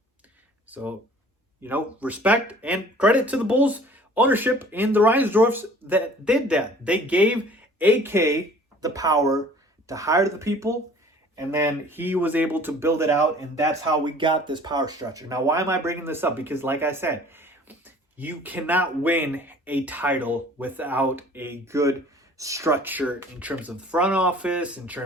So, you know, respect and credit to the Bulls ownership and the Reinsdorfs that did that. They gave AK the power to hire the people, and then he was able to build it out, and that's how we got this power structure. Now, why am I bringing this up? Because, like I said, you cannot win a title without a good structure in terms of the front office, in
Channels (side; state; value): both; normal; correlation 0.50